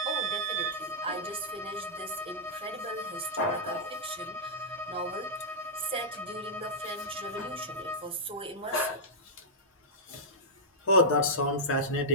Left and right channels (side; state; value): both; normal; correlation -0.10